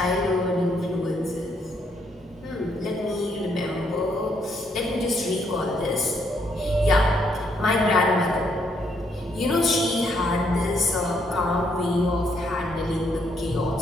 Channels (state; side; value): normal; both; correlation 0.73